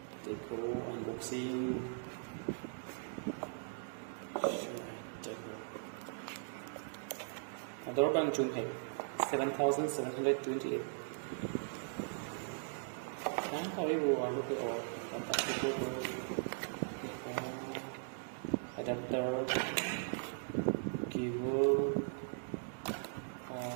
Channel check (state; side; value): silent; left; digital silence